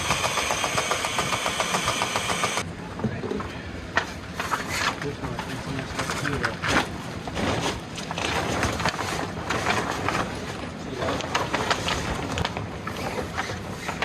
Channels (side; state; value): both; identical; correlation 1.00